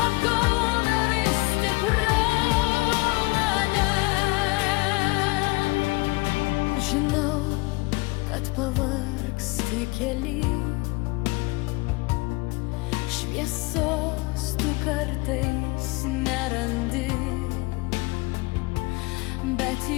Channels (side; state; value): right; quieter; 24.3 dB